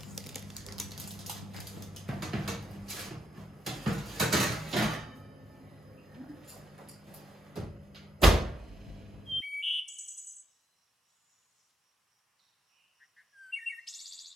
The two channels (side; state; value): both; normal; correlation 0.79